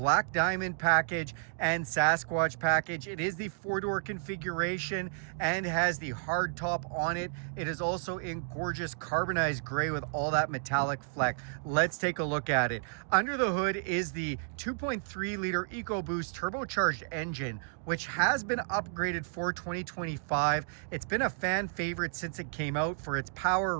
Diamond package and Sasquatch package. It is the four-door configuration and has the hardtop on it. It is also in gorgeous carbonized gray with all that metallic fleck. Let's take a look at it. Under the hood is the 2.3 liter EcoBoost turbocharged engine, which has been upgraded for 2025. It's been a fan favorite since it came out for its power,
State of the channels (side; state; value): left; silent; digital silence